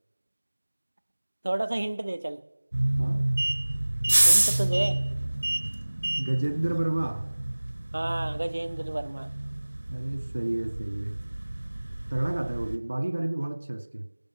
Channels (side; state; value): both; inverted; correlation -1.00